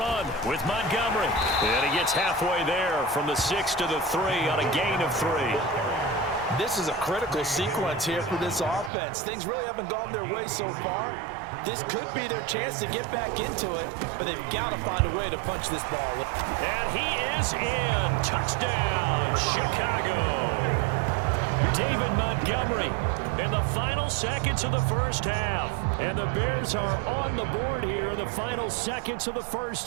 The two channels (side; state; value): left; drops out; at 8.9 s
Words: with Montgomery. And he gets halfway there from the 6 to the 3 on a gain of 3. This is a critical sequence here for this offense. Things really haven't gone their way so far. This could be their chance to get back into it, but they've got to find a way to punch this ball. And he is in. Touchdown, Chicago. David Montgomery in the final seconds of the first half. And the Bears are on the board here in the final seconds of the